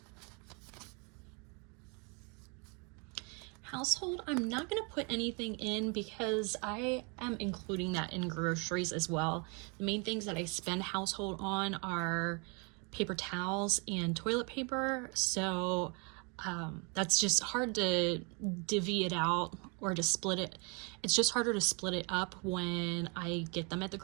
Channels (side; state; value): left; quieter; 33.3 dB